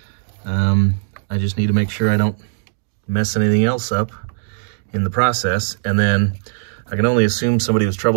I just need to make sure I don't mess anything else up in the process, and then I can only assume somebody was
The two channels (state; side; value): silent; left; digital silence